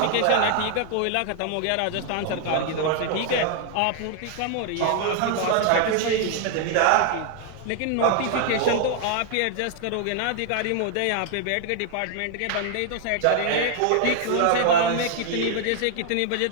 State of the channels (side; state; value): both; different; correlation 0.00